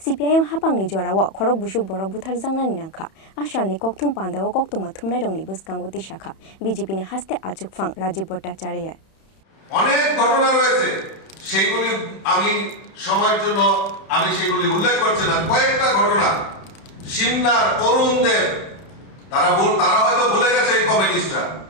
hapangni jorao khorok busuk borok buthar jangnani nangkha asalni kokthum pandao koktuma thumnai rongni buskango tisakha BJP ni haste ajukfang Rajiv Bhattacharya অনেক ঘটনা রয়েছে সেগুলি আমি সময়ের জন্য সেগুলি উল্লেখ করছি না কয়েকটা ঘটনা সিমনার অরুণ দেব তারা হয়তো ভুলে গেছে এই কমিউনিস্টরা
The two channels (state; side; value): late; right; 31 ms